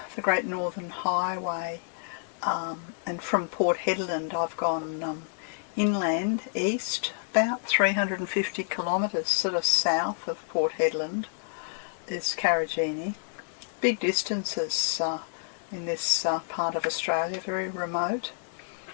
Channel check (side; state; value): right; silent; digital silence